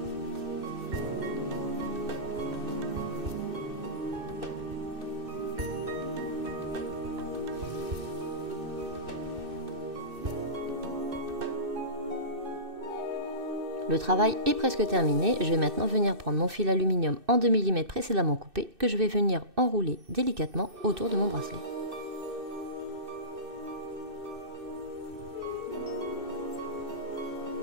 Le travail est presque terminé, je vais maintenant venir prendre mon fil aluminium en 2 mm précédemment coupé que je vais venir enrouler délicatement autour de mon bracelet.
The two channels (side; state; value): left; late; 2.6 ms